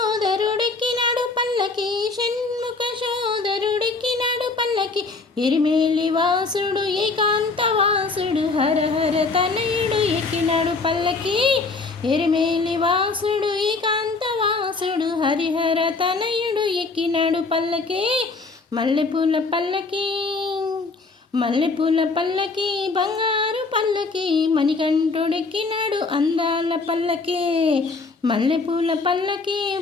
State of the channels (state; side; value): quieter; right; 3.9 dB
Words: పల్లకి షణ్ముఖ సోదరుడెక్కినాడు పల్లకి ఎరిమేలి వాసుడు ఏకాంత వాసుడు హరహర తనయుడు ఎక్కినాడు పల్లకి ఎరిమేలి వాసుడు ఏకాంత వాసుడు హరిహర తనయుడు ఎక్కినాడు పల్లకి మల్లెపూల పల్లకి మల్లెపూల పల్లకి బంగారు పల్లకి మణికంఠుడెక్కినాడు అందాల పల్లకి మల్లెపూల పల్లకి